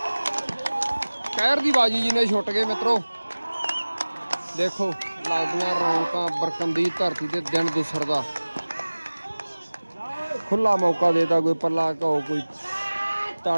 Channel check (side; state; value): both; inverted; correlation -1.00